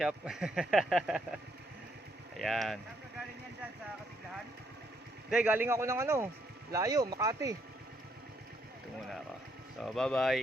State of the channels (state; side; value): normal; both; correlation 0.73